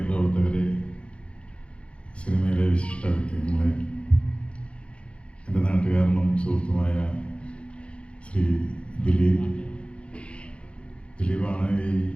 പ്രവർത്തകരെ, സിനിമയിലെ വിശിഷ്ട വ്യക്തിത്വങ്ങളെ, എൻ്റെ നാട്ടുകാരനും സുഹൃത്തുമായ ശ്രീ ദിലീപാണ്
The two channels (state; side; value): late; right; 0.059 ms